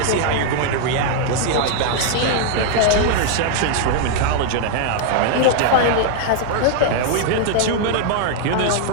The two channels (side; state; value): both; different; correlation 0.00